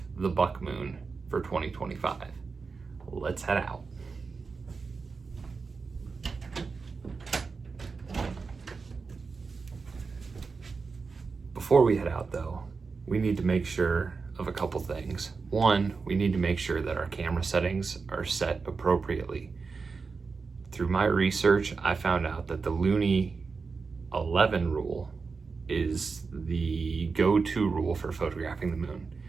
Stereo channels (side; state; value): left; quieter; 4.7 dB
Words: the buck moon for 2025. Let's head out. Before we head out though, we need to make sure of a couple things. One, we need to make sure that our camera settings are set appropriately. Through my research, I found out that the Luni 11 rule is the go-to rule for photographing the moon.